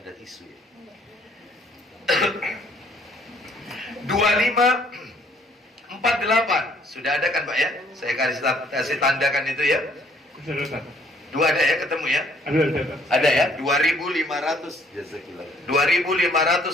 tisu ya. 2548. Sudah ada kan Pak ya? Saya kasih tandakan itu ya. Sudah. Dua ada ya, ketemu ya? Ada ya?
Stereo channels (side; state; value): both; normal; correlation 0.62